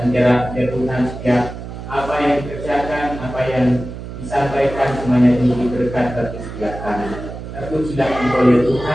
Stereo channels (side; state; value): right; noise; hum, 10 dB below the sound